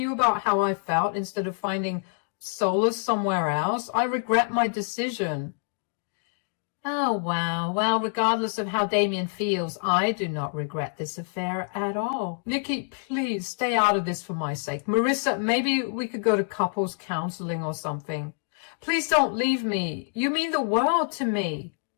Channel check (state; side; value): silent; right; digital silence